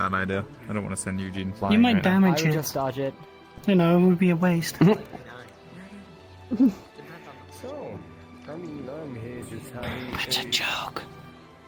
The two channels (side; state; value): both; identical; correlation 1.00